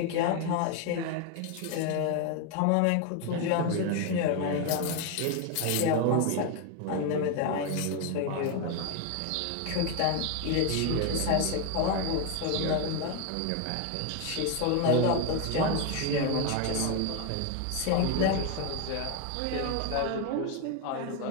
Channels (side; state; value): both; different; correlation 0.01